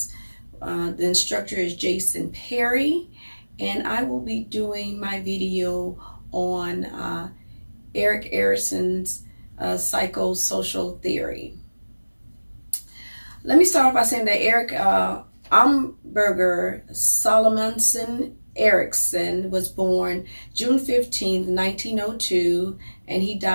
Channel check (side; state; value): both; inverted; correlation -1.00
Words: The instructor is Jason Perry, and I will be doing my video on Erik Erikson's psychosocial theory. Let me start off by saying that Erik Amberger Salomonsen Erikson was born June 15th, 1902, and he